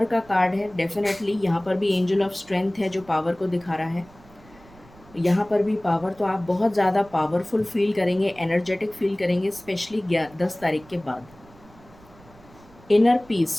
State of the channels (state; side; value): noise; right; rumble, 25 dB below the sound